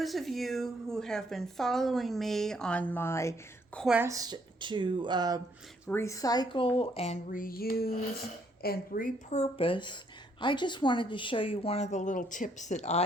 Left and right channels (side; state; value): both; normal; correlation 0.69